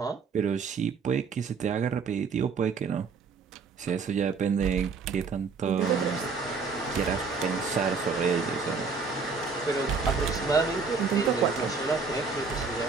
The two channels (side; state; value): left; quieter; 5.1 dB